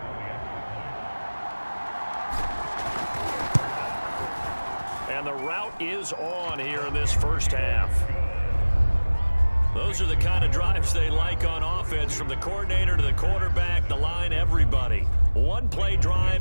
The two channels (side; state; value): both; inverted; correlation -1.00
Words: And the route is on here in this first half. Those are the kind of drives they like on offense, from the coordinator to the quarterback, the line, everybody. One-play